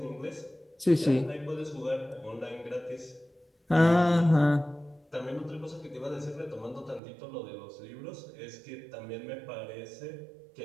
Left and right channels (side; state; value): left; drops out; at 7.0 s